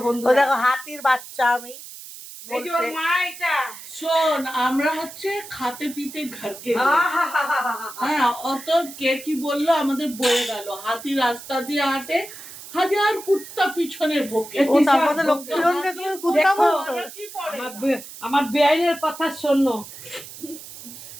বন্ধু। ওই দেখো হাতির বাচ্চা আমি এই যে ওর বলছে। মা এটা। শোন, আমরা হচ্ছে খাতে পিতে ঘরকে হ্যাঁ, অত কে কি বললো আমাদের বয়ে গেল। হাতি রাস্তা দিয়ে হাঁটে, হাজার কুত্তা পিছনে ভোকে। ও তারপরে লক্ষ্মীরঞ্জনকে তুমি কুত্তা দেখো, বলছো? কি পড়ে আমার বেআইনের কথা শোনো।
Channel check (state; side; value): noise; right; hiss, 14 dB below the sound